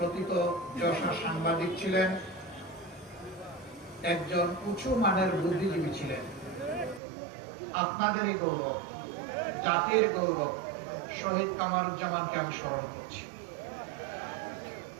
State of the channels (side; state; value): left; drops out; at 7.0 s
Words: যশা সাংবাদিক ছিলেন, একজন উঁচু মানের বুদ্ধিজীবী ছিলেন, আপনাদেরই গৌরব, জাতির গৌরব শহীদ কামারুজ্জামানকে আমি স্মরণ করছি।